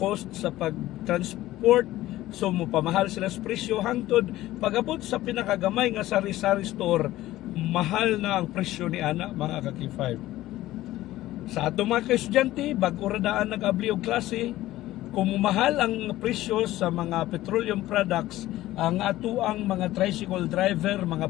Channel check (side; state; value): right; quieter; 15.8 dB